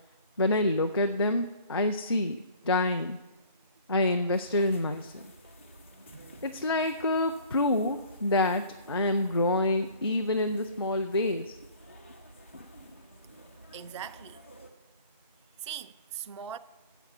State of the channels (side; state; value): both; inverted; correlation -0.50